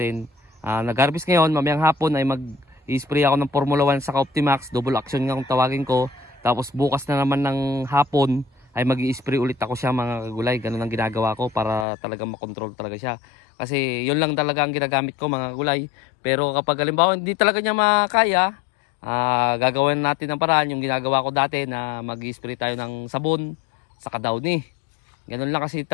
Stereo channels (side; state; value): right; drops out; at 11.9 s